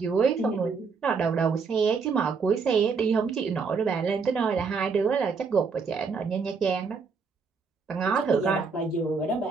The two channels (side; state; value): left; quieter; 5.1 dB